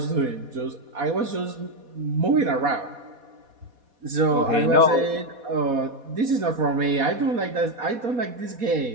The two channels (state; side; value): late; left; 4.1 ms